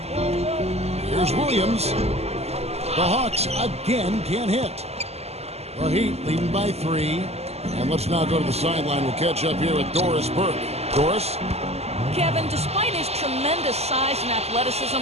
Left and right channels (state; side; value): late; left; 0.30 ms